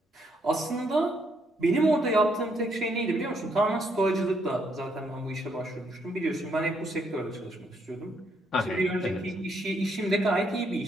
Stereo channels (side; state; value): both; normal; correlation 0.73